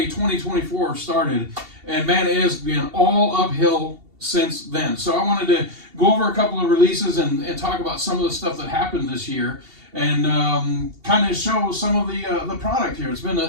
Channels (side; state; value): left; late; 2.7 ms